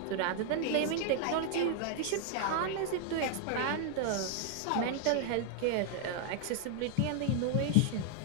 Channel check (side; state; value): both; different; correlation 0.00